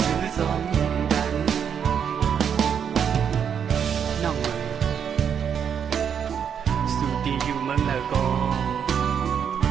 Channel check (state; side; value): quieter; left; 7.8 dB